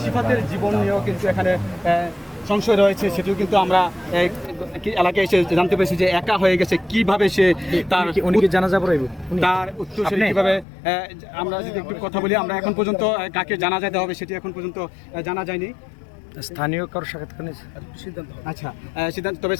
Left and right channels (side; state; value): right; drops out; at 10.7 s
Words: সিফাতের জীবন নিয়েও কিন্তু এখানে সংশয় রয়েছে। সেটিও কিন্তু আমরা এলাকায় এসে জানতে পেরেছি যে একা হয়ে গেছে। কিভাবে সে তার জানাজা পড়াইব, তার উত্তর সেটি কীভাবে, আমরা যদি একটু কথা বলি, আমরা এখন পর্যন্ত কাকে জানাজা দেওয়া হবে সেটি এখন পর্যন্ত জানা যায়নি। স্থানীয় কারোর সাক্ষাৎকার নিয়েছে সিদ্ধান্ত, আচ্ছা সিদ্ধান্ত, তবে